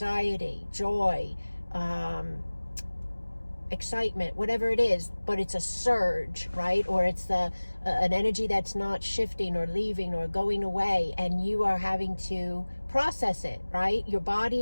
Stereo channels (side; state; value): both; inverted; correlation -1.00